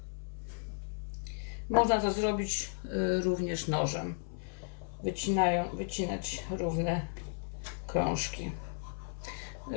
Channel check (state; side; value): silent; right; 55 dB below the other